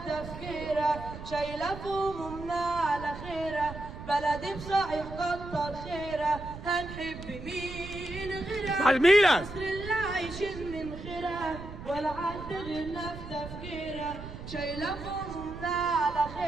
تفكيرها، شايلة في همومنا على خيرها، بلدي بصحيح كتر خيرها. هنحب مين غيرها؟ مصر اللي عايشين من خيرها، ولا حد غيرنا في تفكيرها، شايلة في همومنا على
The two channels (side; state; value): right; noise; rumble, 11 dB below the sound